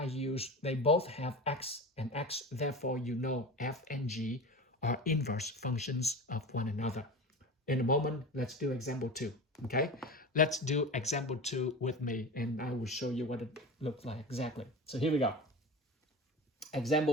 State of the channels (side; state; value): both; normal; correlation 0.30